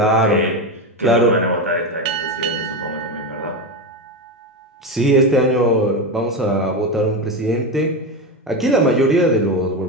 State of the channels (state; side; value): normal; both; correlation 0.16